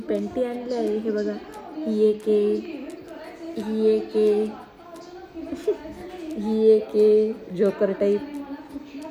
पेंटी आणली आहे. हे बघा, ही एक आहे, ही एक आहे, ही एक आहे जोकर टाईप,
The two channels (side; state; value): both; identical; correlation 1.00